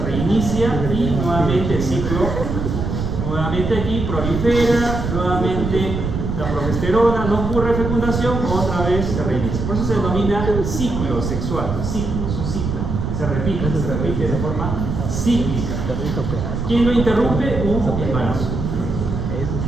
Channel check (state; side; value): noise; right; rumble, 3 dB below the sound